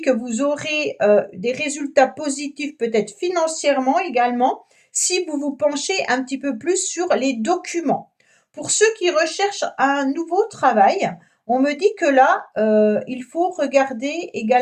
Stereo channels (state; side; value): identical; both; correlation 1.00